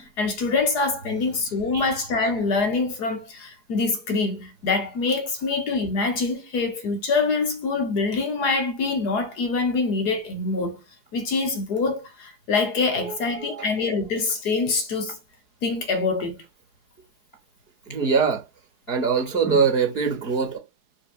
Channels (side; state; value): right; late; 4.8 ms